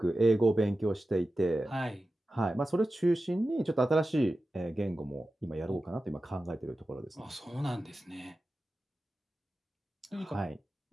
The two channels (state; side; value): normal; both; correlation 0.93